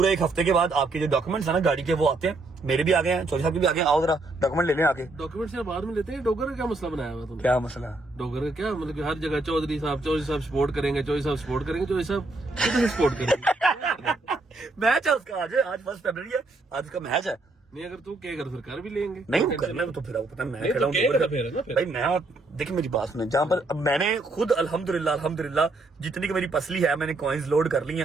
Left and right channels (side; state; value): left; quieter; 3.1 dB